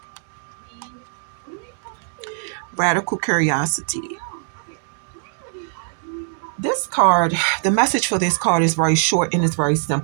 Radical curiosity. This card, the message for this card is very short and it's very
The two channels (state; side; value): silent; left; digital silence